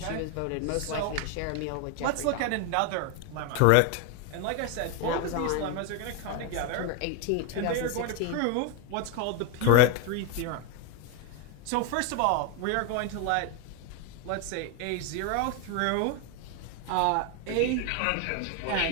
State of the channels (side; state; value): both; different; correlation 0.01